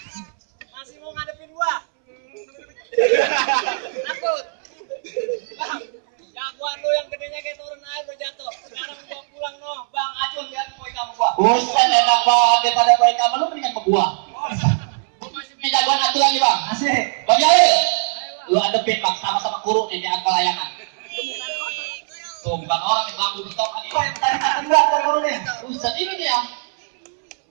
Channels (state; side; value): silent; left; 65 dB below the other